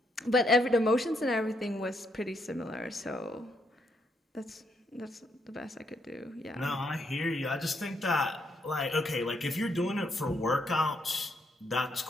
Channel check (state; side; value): normal; both; correlation 0.76